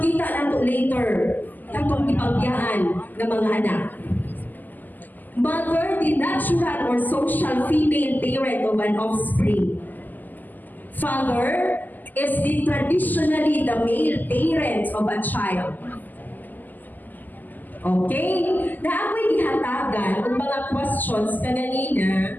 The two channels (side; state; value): right; late; 0.085 ms